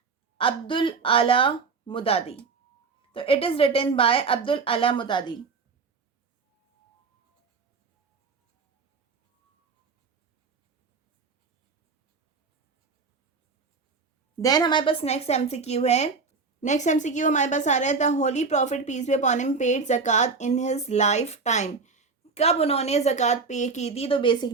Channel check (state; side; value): quieter; left; 4.7 dB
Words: Abdul Ala Maududi. तो it is written by Abdul Ala Maududi. Then हमारे पास नेक्स्ट एमसीक्यू है नेक्स्ट एमसीक्यू हमारे पास आ रहा है, the holy prophet peace be upon him paid ज़कात इन हिज लाइफ टाइम। कब उन्होंने ज़कात पे की थी? तो